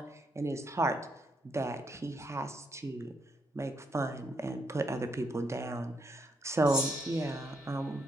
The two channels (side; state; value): both; normal; correlation 0.77